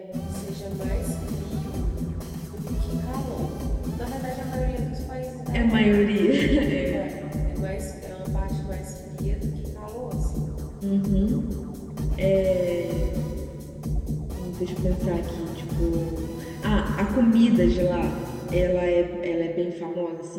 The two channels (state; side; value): identical; both; correlation 1.00